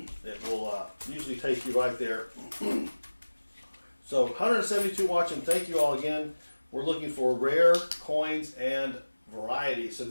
It will usually take you right there. So 172 watching. Thank you all again. We're looking for rare coins and varieties. So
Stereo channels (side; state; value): both; inverted; correlation -1.00